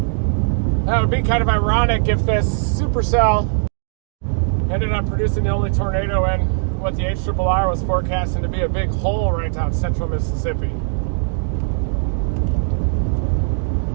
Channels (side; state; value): left; silent; digital silence